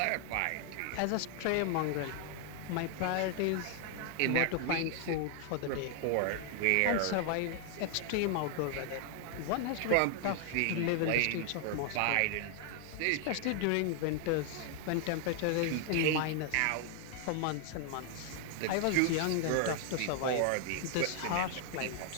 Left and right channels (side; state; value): both; different; correlation 0.00